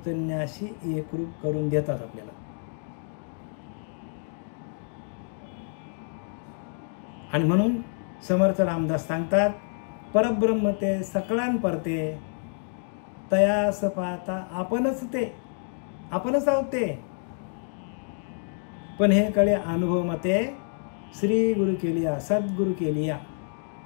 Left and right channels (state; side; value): silent; right; 60 dB below the other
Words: एकरूप करून देतात आपल्याला. आणि म्हणून समर्थ रामदास सांगतात, परब्रह्म ते सकळान परते, तयास पाहता आपणच ते, आपणच आहोत ते. पण हे कळे अनुभव मते श्री गुरु केलिया, सद्गुरु केलिया.